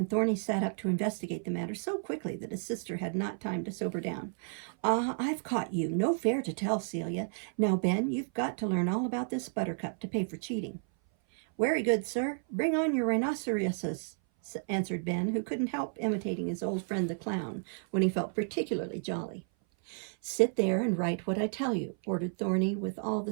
Thorny sat up to investigate the matter so quickly that his sister had not time to sober down. I've caught you. No fair to tell, Celia. Now, Ben, you've got to learn all about this buttercup to pay for cheating. Very good, sir. Bring on your rhinoceroses, answered Ben, who couldn't help imitating his old friend the clown when he felt particularly jolly. Sit there and write what I tell you, ordered Thorny with all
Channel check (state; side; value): silent; left; 56 dB below the other